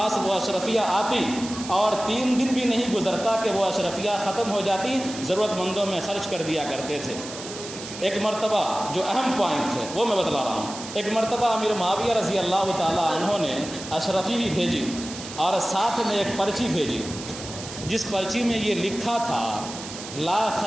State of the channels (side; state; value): right; noise; hiss, 11 dB below the sound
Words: وہ اشرفیہ آتی اور 3 دن بھی نہیں گزرتا کہ وہ اشرفیہ ختم ہو جاتی، ضرورت مندوں میں خرچ کر دیا کرتے تھے۔ ایک مرتبہ جو اہم پوائنٹ ہے وہ میں بتلا رہا ہوں، ایک مرتبہ امیر معاویہ رضی اللہ تعالی عنہ نے اشرفی بھی بھیجی اور ساتھ میں ایک پرچی بھیجی، جس پرچی میں یہ لکھا تھا لا